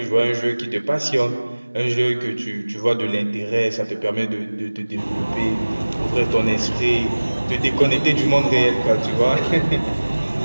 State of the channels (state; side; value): inverted; both; correlation -1.00